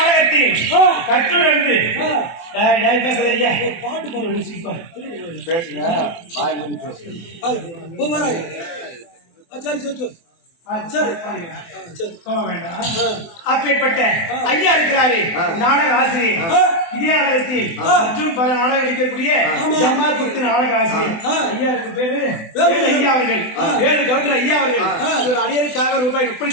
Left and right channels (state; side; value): late; right; 24 ms